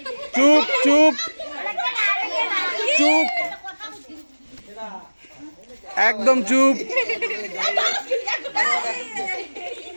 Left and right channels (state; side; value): inverted; both; correlation -1.00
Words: চুপ চুপ চুপ একদম চুপ।